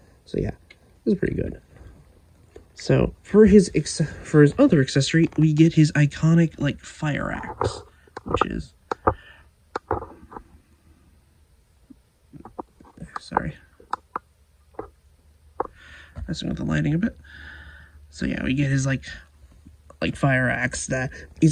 So yeah, it was pretty good. So for his other accessory, we get his iconic, like, fire axe, which is, sorry, messing with the lighting a bit. So yeah, we get his like fire axe that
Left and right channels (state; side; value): identical; both; correlation 1.00